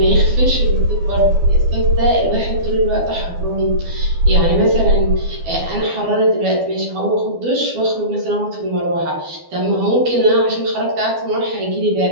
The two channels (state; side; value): late; left; 12 ms